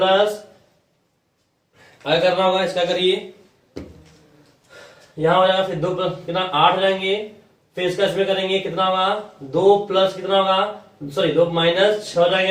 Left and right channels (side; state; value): both; identical; correlation 1.00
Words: क्या करना होगा इसका करिए यहाँ हो जाएगा, फिर 2 प्लस कितना 8 हो जाएंगे, फिर इसका इसमें करेंगे कितना होगा 2 प्लस कितना होगा सॉरी 2 माइनस 6 हो